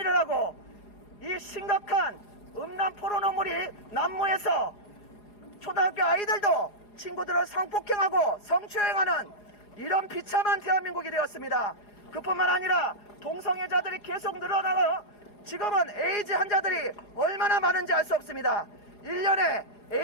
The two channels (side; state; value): right; late; 4.8 ms